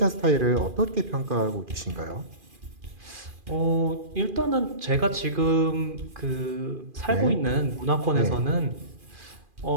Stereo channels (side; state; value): left; late; 2.4 ms